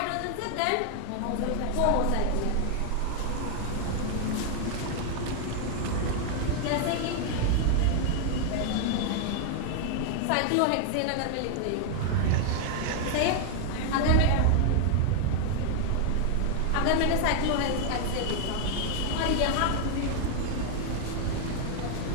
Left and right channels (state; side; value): different; both; correlation 0.00